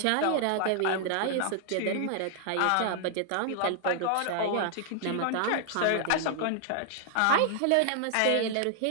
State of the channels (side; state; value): both; different; correlation 0.00